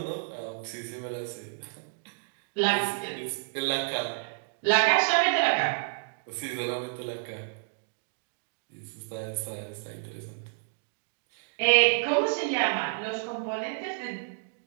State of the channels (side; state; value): left; silent; digital silence